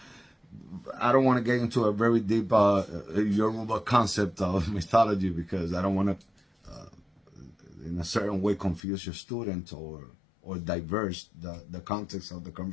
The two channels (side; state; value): right; drops out; at 8.8 s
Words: I don't want to get into a very deep Yoruba concept of mythology, because I don't want to in a certain way confuse your student or diverse the context of the